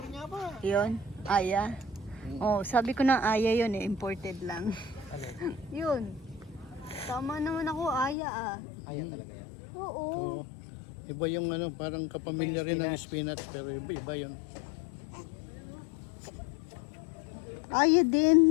niya ba? Yun, aya. Oh, sabi ko na aya yun eh, imported lang. Yun. Tama naman ako, aya ah. Ayan talaga yan. Oo. Iba yung ano, parang kapamilya rin ng spinach, pero iba yun. Ayaw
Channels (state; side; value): drops out; right; at 8.2 s